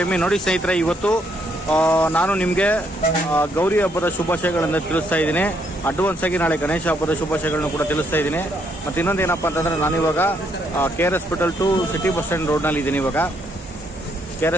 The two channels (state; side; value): normal; both; correlation 0.72